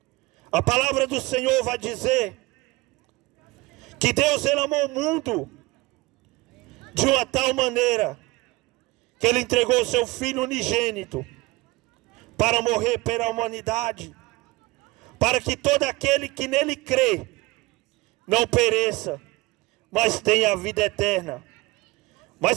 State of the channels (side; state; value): left; quieter; 21.9 dB